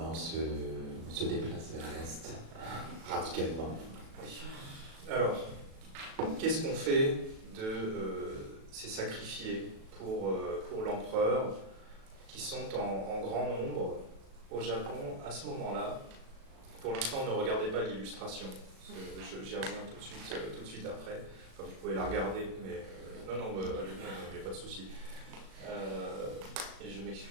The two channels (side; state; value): left; late; 37 ms